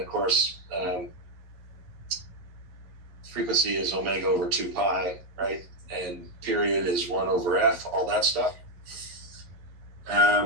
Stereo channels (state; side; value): late; left; 11 ms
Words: of course, frequency is omega over 2 pi, right? And period is 1 over f, all that stuff.